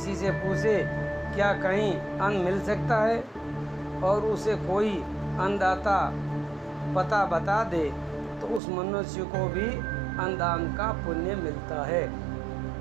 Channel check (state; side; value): drops out; left; at 8.6 s